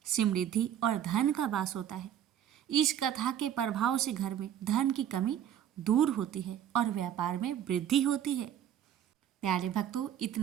समृद्धि और धन का वास होता है। इस कथा के प्रभाव से घर में धन की कमी दूर होती है और व्यापार में वृद्धि होती है। प्यारे भक्तों,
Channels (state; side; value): quieter; left; 10.2 dB